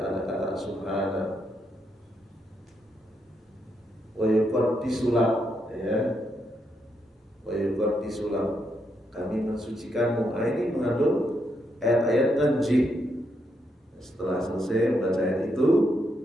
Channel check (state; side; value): normal; both; correlation 0.80